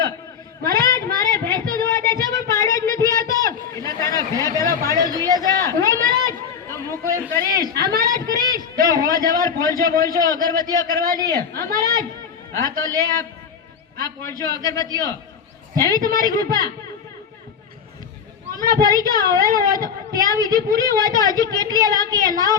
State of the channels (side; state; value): right; quieter; 7.0 dB